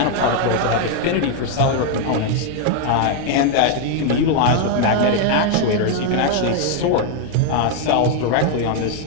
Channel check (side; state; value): both; different; correlation 0.00